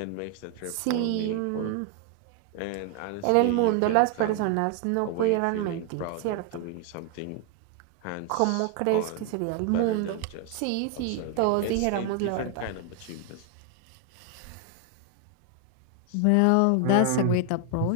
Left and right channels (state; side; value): different; both; correlation 0.01